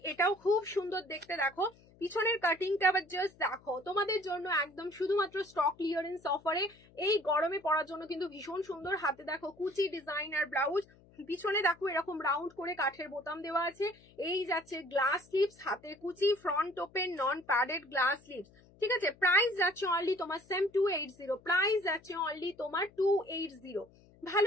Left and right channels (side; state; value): left; noise; hum, 27 dB below the sound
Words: এটাও খুব সুন্দর দেখতে, দেখো পিছনের কাটিংটা আবার জাস্ট দেখো, তোমাদের জন্য একদম শুধুমাত্র স্টক ক্লিয়ারেন্স অফারে এই গরমে পরার জন্য কিন্তু ভীষণ সুন্দর। হাতে দেখো কুচি ডিজাইন আর ব্লাউজ, পিছনে দেখো এরকম রাউন্ড করে কাঠের বোতাম দেওয়া আছে। এই যাচ্ছে গ্লাস স্লিভস, হাতে কুচি, front open, non padded, glass sleeves, ঠিক আছে? প্রাইস যাচ্ছে অনলি তোমার সেম 280, প্রাইস যাচ্ছে অনলি তোমার 280।